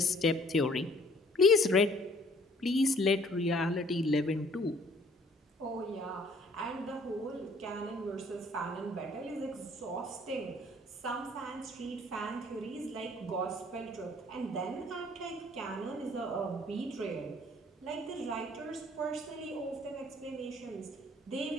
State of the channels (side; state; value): both; normal; correlation 0.58